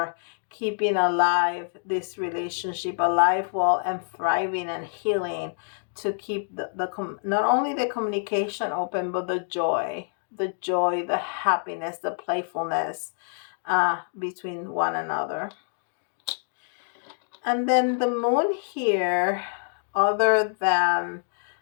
keeping alive this relationship, alive, well, and thriving and healing, to keep not only the communication open, but the joy, the happiness, the playfulness between one another. And then the moon here, other than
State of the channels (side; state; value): right; silent; digital silence